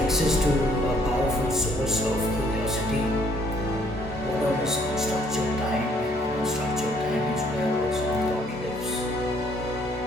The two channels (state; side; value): normal; both; correlation 0.64